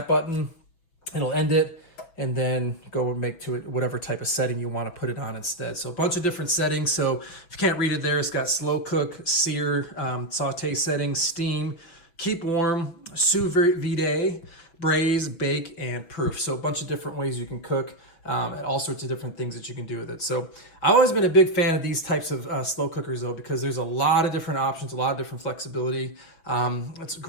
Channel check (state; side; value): late; right; 6.1 ms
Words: button. It'll end it and then go and make to it whatever type of setting you want to put it on instead. So a bunch of different settings. So if you can't read it there, it's got slow cook, sear, saute settings, steam, keep warm, sous vide, braise, bake, and proof. So a bunch of different ways you can cook. And all sorts of different things that you can do with it. So I've always been a big fan of these types of slow cookers though, because there's a lot of different options, a lot of different flexibility. It's